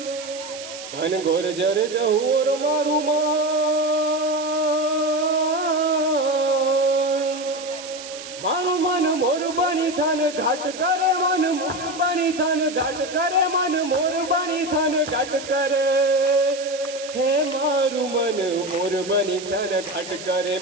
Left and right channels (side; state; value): right; noise; hiss, 12 dB below the sound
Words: ઘન ઘોર જરે જહોર મારું મન, મારું મન મોર બની થન ઘાટ કરે, મન મોર બની થન ઘાટ કરે, મન મોર બની થન ઘાટ કરે, હે મારું મન મોર બની થન ઘાટ કરે,